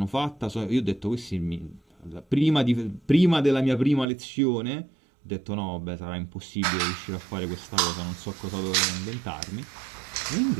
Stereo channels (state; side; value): drops out; left; at 4.0 s